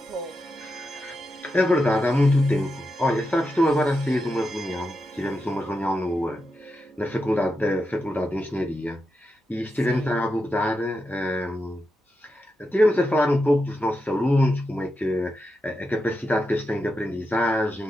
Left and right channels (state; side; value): normal; both; correlation 0.87